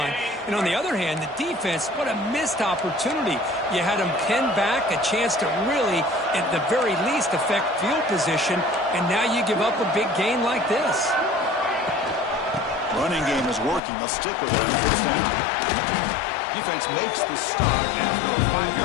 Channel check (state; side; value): drops out; right; at 13.8 s